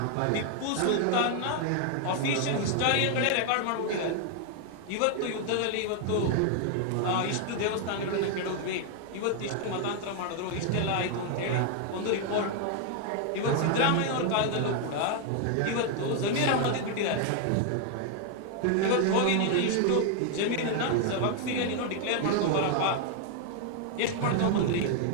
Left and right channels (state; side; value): different; both; correlation 0.00